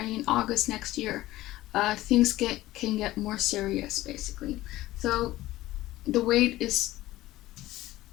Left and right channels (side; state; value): right; quieter; 16.5 dB